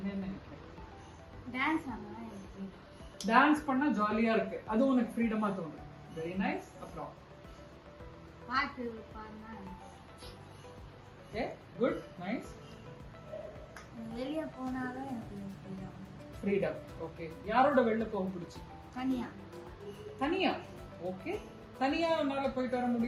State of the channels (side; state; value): both; identical; correlation 1.00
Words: நினைக்கிற? டான்ஸ் பண்ணா ஜாலியா இருக்கு, அது உனக்கு ஃப்ரீடமா தோணுது. Very nice. அப்புறம் பாட்டு பாடுனா ஓகே, குட், நைஸ். வெளிய போனாவே எனக்கு ஃப்ரீடம். ஓகே, யாரோட வெளில போக பிடிச்சி? தனியா. தனியா? ஓகே, தனியா உன்னால போயிட்டு வர